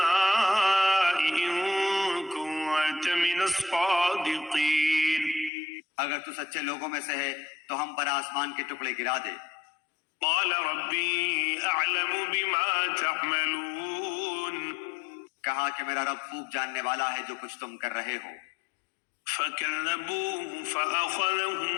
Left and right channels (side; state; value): right; drops out; at 5.5 s